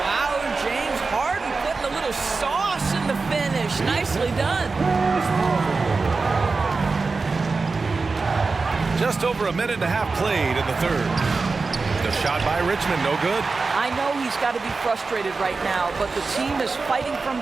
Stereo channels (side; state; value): left; quieter; 4.1 dB